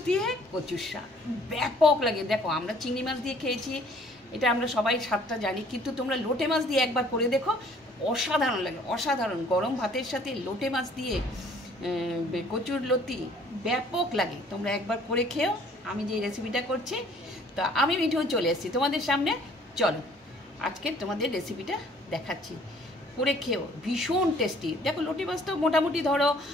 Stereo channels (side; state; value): both; normal; correlation 0.57